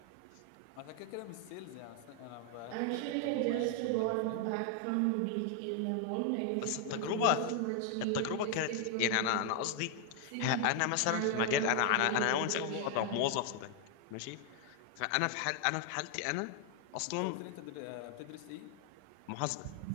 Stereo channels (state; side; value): different; both; correlation 0.00